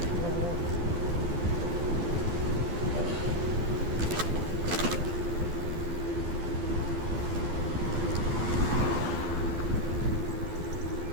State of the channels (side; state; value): left; late; 12 ms